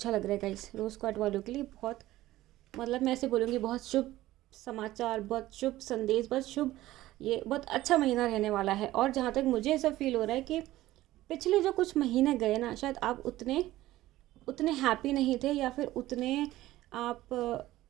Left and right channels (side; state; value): left; quieter; 16.0 dB